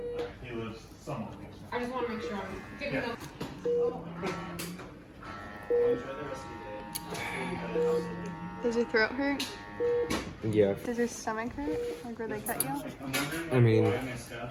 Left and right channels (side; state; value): both; identical; correlation 1.00